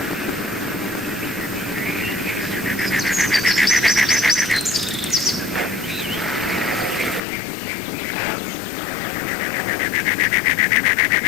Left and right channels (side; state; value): right; drops out; at 7.2 s